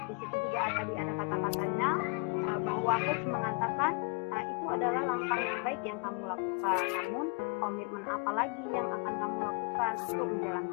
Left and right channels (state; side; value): quieter; right; 33.6 dB